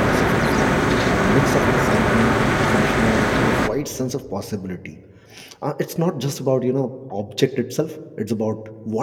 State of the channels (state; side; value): identical; both; correlation 1.00